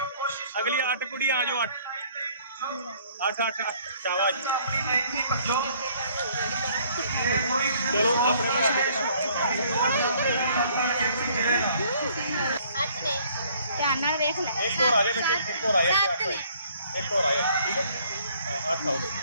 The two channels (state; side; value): inverted; both; correlation -0.60